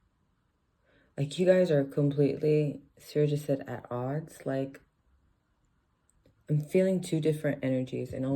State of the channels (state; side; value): identical; both; correlation 1.00